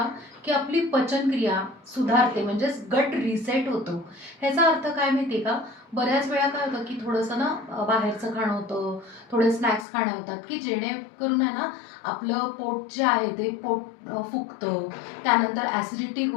की आपली पचनक्रिया सुधारते, म्हणजेच गट रिसेट होतो. ह्याचा अर्थ काय माहिती आहे का? बऱ्याच वेळा काय होतं की थोडंसं ना बाहेरचं खाणं होतं, थोडे स्नॅक्स खाणे होतात की जेणेकरून आहे ना आपलं पोट जे आहे ते पोट फुगतं. त्यानंतर ॲसिडिटी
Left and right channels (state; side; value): drops out; right; at 9.9 s